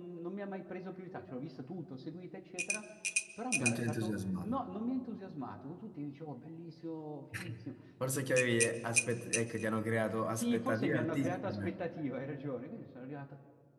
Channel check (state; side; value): identical; both; correlation 1.00